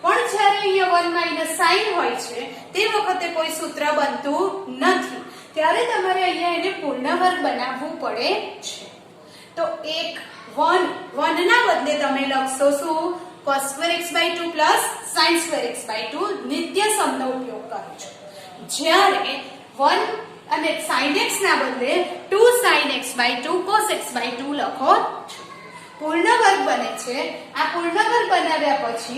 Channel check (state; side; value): identical; both; correlation 1.00